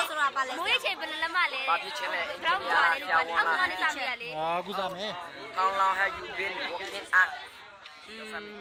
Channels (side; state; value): both; identical; correlation 1.00